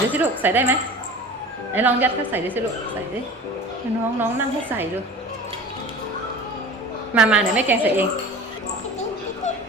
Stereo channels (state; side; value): normal; both; correlation 0.37